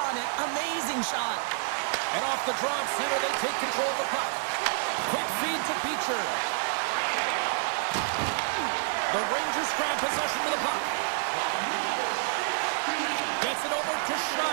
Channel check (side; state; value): left; silent; digital silence